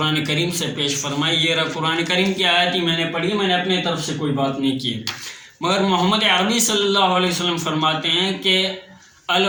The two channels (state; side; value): identical; both; correlation 1.00